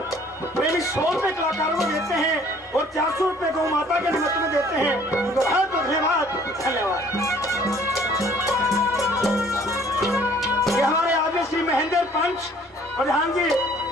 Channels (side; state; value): both; normal; correlation 0.56